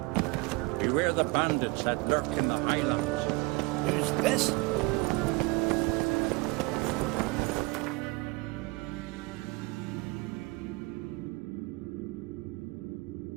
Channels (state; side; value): quieter; left; 24.9 dB